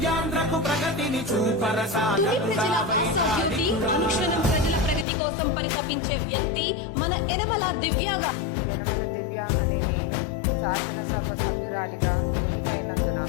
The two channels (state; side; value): drops out; right; at 5.1 s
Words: ప్రగతిని చూపర సాధకుడా. అనుక్షణం ప్రజల ప్రగతి కోసం పరితపించే వ్యక్తి మన యనమల దివ్య అనే నేను శాసనసభ సభ్యురాలిగా ఎన్నికైనందున